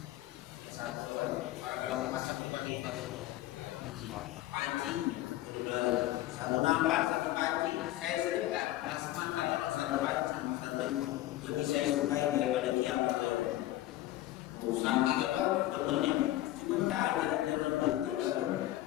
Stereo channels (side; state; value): right; quieter; 15.4 dB